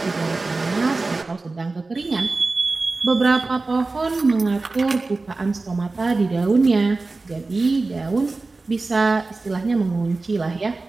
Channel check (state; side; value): quieter; left; 3.5 dB